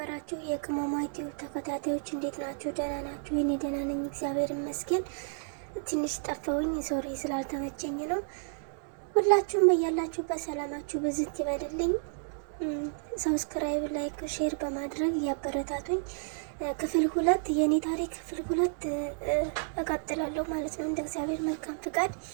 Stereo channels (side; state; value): left; silent; digital silence